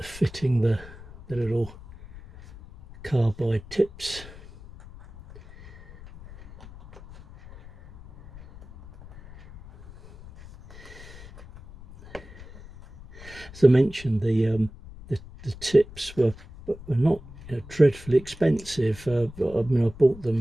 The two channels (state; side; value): noise; left; rumble, 18 dB below the sound